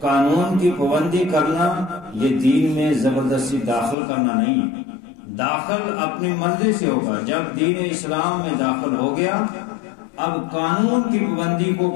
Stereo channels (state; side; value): drops out; right; at 4.0 s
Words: قانون کی پابندی کرنا یہ دین میں زبردستی داخل کرنا نہیں ہے، داخل اپنی مرضی سے ہوگا۔ جب دین اسلام میں داخل ہو گیا، اب قانون کی پابندی کو